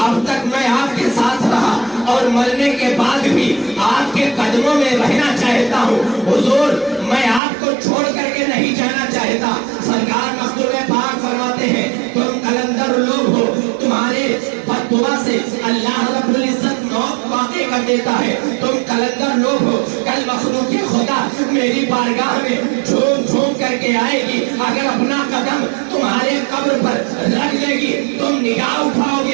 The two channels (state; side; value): drops out; left; at 7.4 s